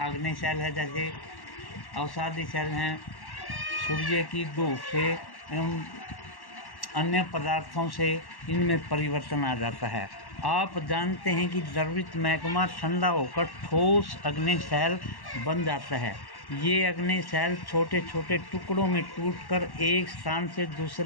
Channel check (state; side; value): late; right; 1.1 ms